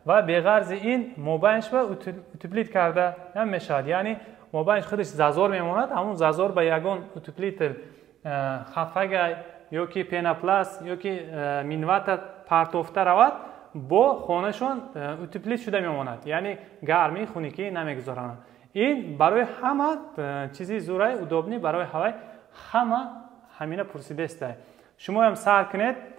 و به غرض این موبایلش با اوتوپلیت کرده هم میشد، یعنی موبایلش خودش زازور میماند، همون زازور با یگان اوتوپلیت خفگی یا که پیناپلاس یا که مینوات پرتوفته رود با خانهشون اوتوپلیت شده میماند، یعنی گرمی خونگی نمیگذارند. این برای همه چیزی زورای ادوبنی برای هوای همه همینه پرسیده است. شما هم سر کنید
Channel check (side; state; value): left; quieter; 11.6 dB